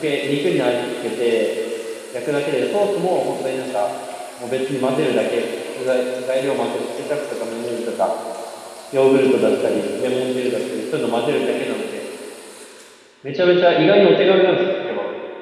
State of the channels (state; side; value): identical; both; correlation 1.00